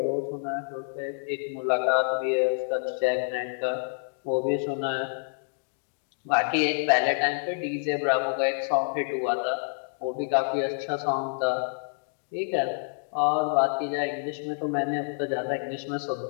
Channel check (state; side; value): silent; right; digital silence